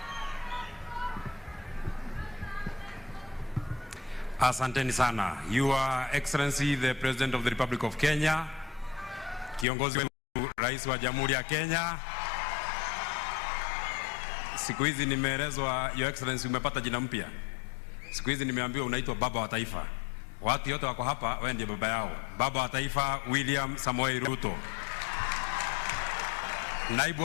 Asanteni sana. Your Excellency the President of the Republic of Kenya, kiongozi wetu Rais wa Jamhuri ya Kenya. Siku hizi nimeelezwa Your Excellency umepata jina mpya. Siku hizi nimeambiwa unaitwa baba wa taifa. Watu wote wako hapa wewe ndiye baba yao. Baba wa taifa William Samoei Ruto. Naibu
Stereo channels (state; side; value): drops out; right; at 9.7 s